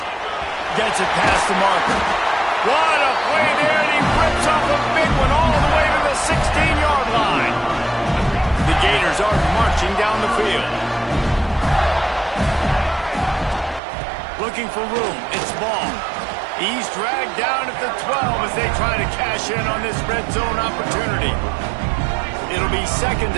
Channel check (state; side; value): drops out; left; at 13.8 s